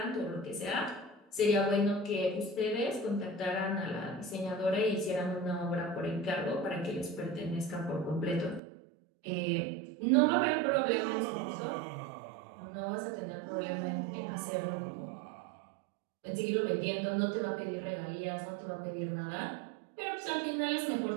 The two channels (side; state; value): left; drops out; at 8.6 s